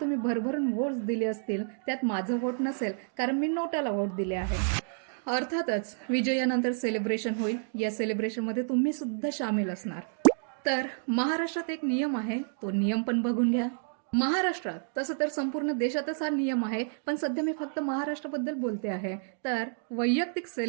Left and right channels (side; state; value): left; silent; digital silence